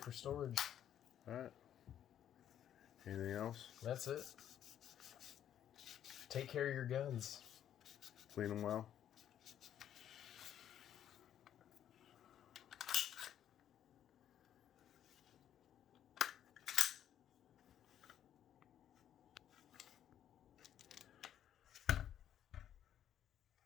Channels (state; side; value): quieter; right; 10.3 dB